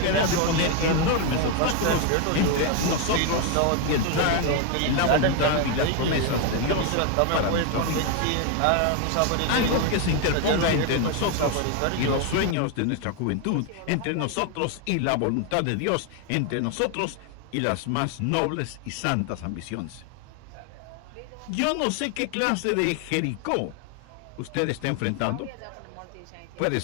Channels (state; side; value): different; both; correlation 0.01